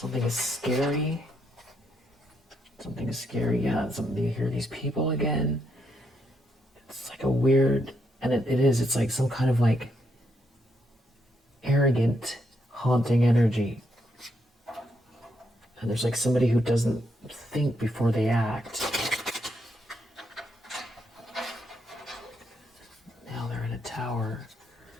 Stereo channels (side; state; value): both; normal; correlation 0.78